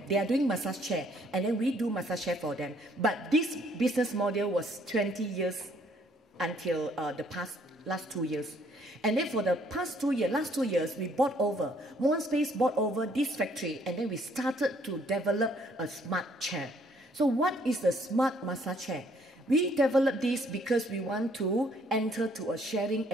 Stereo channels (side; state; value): both; normal; correlation 0.64